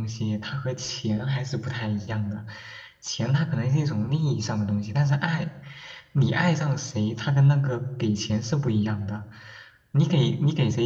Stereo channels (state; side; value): identical; both; correlation 1.00